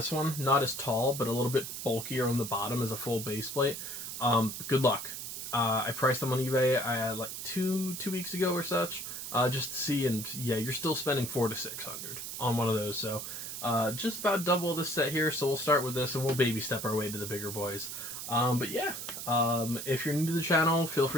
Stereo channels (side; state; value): right; noise; hiss, 7 dB below the sound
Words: one. Not as tall, but a little bit bulkier on the bottom as a full base plate. Good luck. I priced them on eBay like two weeks ago or such, just to see, and yeah, you're still spending $400 to $600 on one of those. So just about double this set here. So we'll start with this, and we'll baby step our way to the bigger boys. But yeah, if you're new to the channel, feel